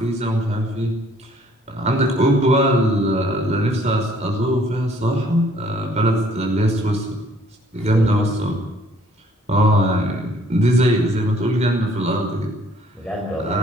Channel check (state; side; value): normal; both; correlation 0.60